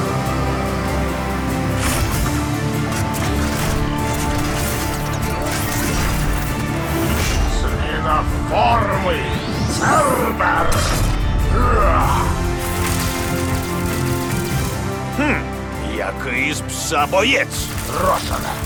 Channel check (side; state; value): both; identical; correlation 1.00